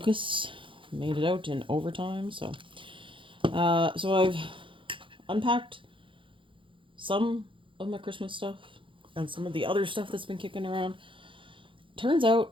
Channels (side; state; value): left; late; 0.25 ms